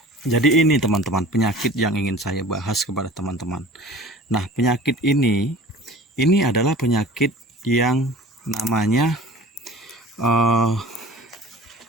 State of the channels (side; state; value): both; normal; correlation 0.43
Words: jadi ini teman-teman penyakit yang ingin saya bahas kepada teman-teman. Nah, penyakit ini adalah penyakit yang namanya